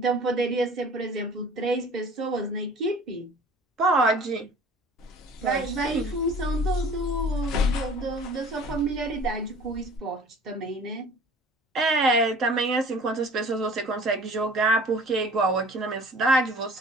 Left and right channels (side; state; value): both; normal; correlation 0.47